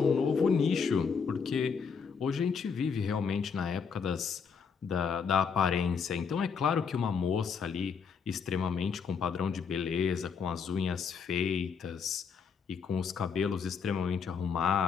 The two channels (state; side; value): quieter; right; 6.1 dB